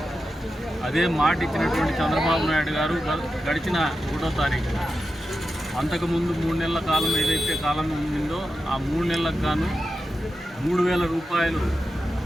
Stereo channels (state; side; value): normal; both; correlation 0.90